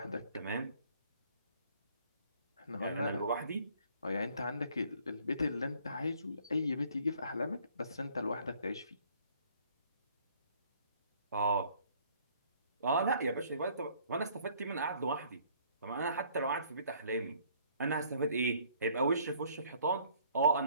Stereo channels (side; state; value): both; inverted; correlation -0.59